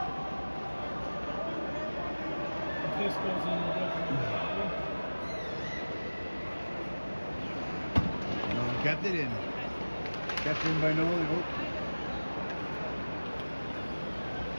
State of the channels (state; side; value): inverted; both; correlation -1.00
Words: If this goes in, we'll definitely. Kept it in. Kept in by Nolan. Oh.